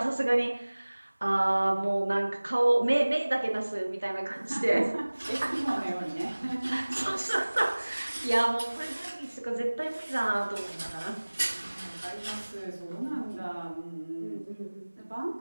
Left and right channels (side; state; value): both; inverted; correlation -1.00